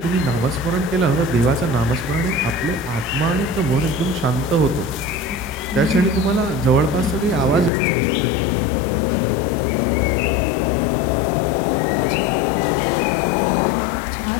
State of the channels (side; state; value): right; drops out; at 7.7 s